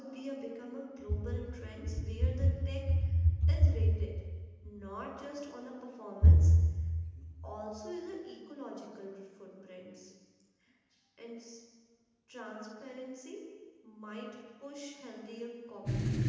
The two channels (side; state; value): both; identical; correlation 1.00